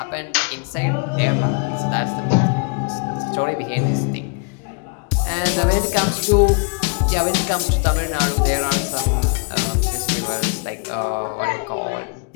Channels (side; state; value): right; quieter; 36.2 dB